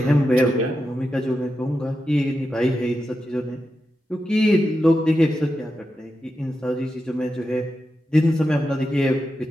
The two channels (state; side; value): normal; both; correlation 0.89